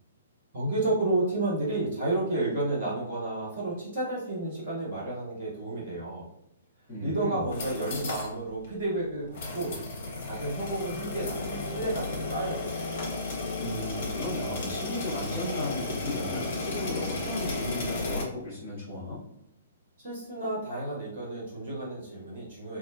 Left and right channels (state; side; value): inverted; both; correlation -0.48